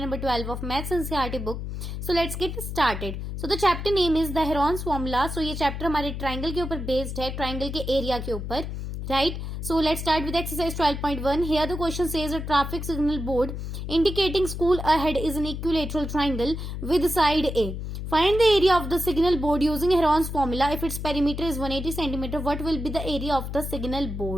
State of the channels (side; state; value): left; noise; hum, 6 dB below the sound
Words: 12 of Maths NCERT book. So let's get started. So the chapter name is the Heron's Formula. So ये chapter हमारे triangle के ऊपर based है, triangle के area के ऊपर, right? So let's start with exercise 12.1. Here the question says a traffic signal board indicating school ahead is an equilateral triangle with side A. Find the area of the signal board using Heron's formula. If its perimeter is 180 cm, what will be the area of the signal